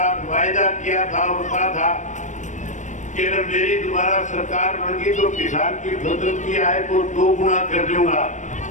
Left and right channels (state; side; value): late; right; 0.35 ms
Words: वायदा किया था और कहा था कि अगर मेरी दोबारा सरकार बन गई तो किसान की फसल की आय को 2 गुना कर दूंगा।